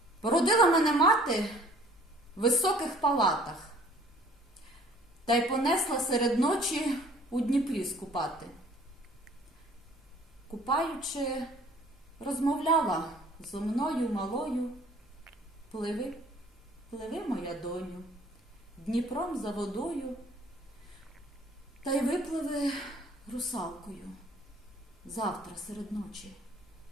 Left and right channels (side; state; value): both; normal; correlation 0.54